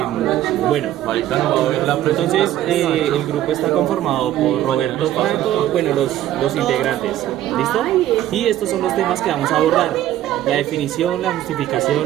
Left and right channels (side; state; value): left; quieter; 12.9 dB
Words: Bueno, entonces el grupo está conformado por Roberto Franco, bueno, los integrantes, ¿listo? Y estos son los temas que vamos a abordar: la definición, la